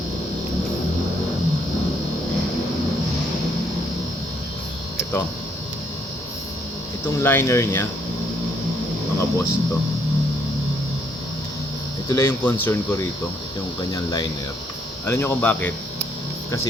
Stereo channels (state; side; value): normal; both; correlation 0.70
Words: Ito. Itong liner niya, mga boss, ito. Ito lang yung concern ko rito. Ito yung kanyang liner. Alam nyo kung bakit?